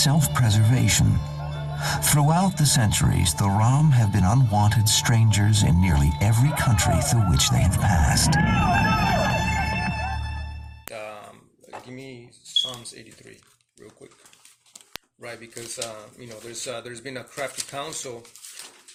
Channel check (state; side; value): identical; both; correlation 1.00